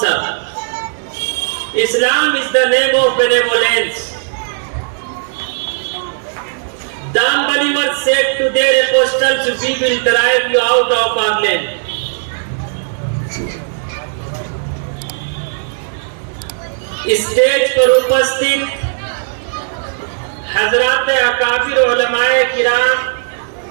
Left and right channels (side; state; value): left; silent; digital silence